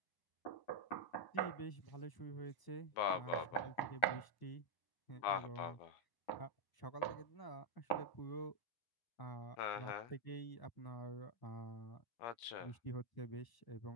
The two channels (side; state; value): right; late; 9.7 ms